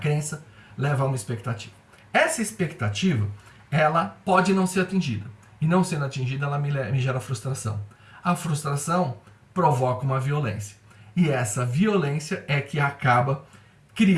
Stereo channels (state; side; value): identical; both; correlation 1.00